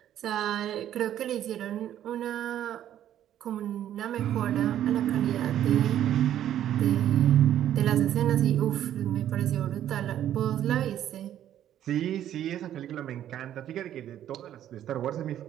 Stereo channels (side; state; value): left; quieter; 11.3 dB